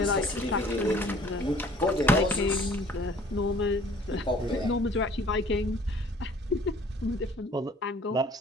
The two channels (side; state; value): both; normal; correlation 0.53